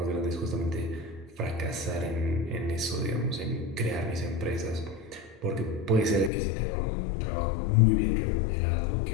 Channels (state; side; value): drops out; right; at 6.3 s